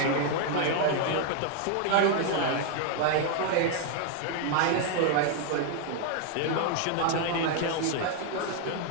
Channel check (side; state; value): both; different; correlation 0.00